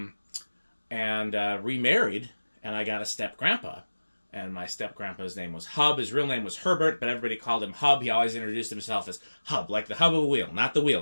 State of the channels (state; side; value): inverted; both; correlation -1.00